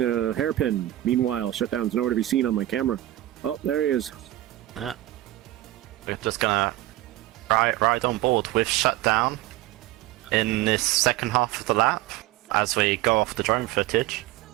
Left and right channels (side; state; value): left; quieter; 15.4 dB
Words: hairpin. Meanwhile, Shutdown's nowhere to be seen on my camera. Oh, there he is. We're just gonna ride on board with Shutdown in this second half of the lap as we go off the drone footage.